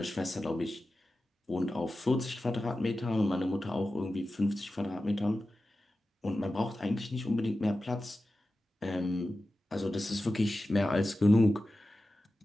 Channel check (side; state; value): both; normal; correlation 0.94